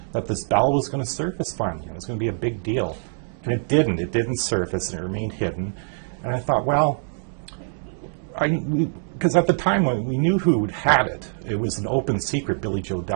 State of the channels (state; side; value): silent; left; 63 dB below the other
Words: that this bell was going to surface finally. It was going to be a big deal. And it didn't. It didn't surface, and it remained hidden. And I thought, well, because at the time when we knew who had it, it was an open secret. Billy Joe